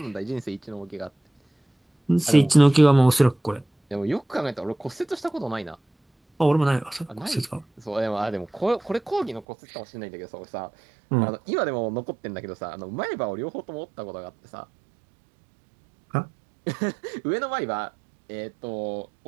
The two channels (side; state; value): left; drops out; at 9.5 s